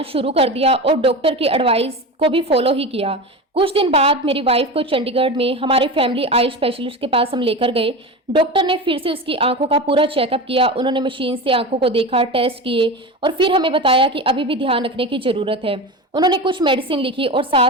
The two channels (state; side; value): normal; both; correlation 0.26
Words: शुरू कर दिया और डॉक्टर की एडवाइस को भी फॉलो ही किया। कुछ दिन बाद मेरी वाइफ को चंडीगढ़ में हमारे फैमिली आई स्पेशलिस्ट के पास हम लेकर गए। डॉक्टर ने फिर से उसकी आंखों का पूरा चेकअप किया। उन्होंने मशीन से आंखों को देखा, टेस्ट किए और फिर हमें बताया कि अभी भी ध्यान रखने की जरूरत है। उन्होंने कुछ मेडिसिन लिखी और